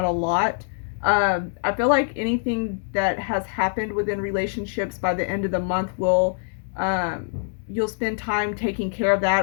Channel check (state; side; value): silent; right; 63 dB below the other